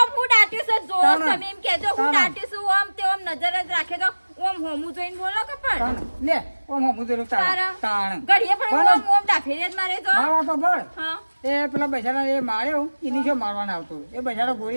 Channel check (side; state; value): both; inverted; correlation -1.00